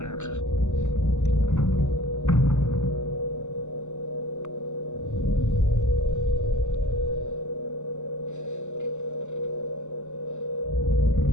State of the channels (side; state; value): right; late; 0.83 ms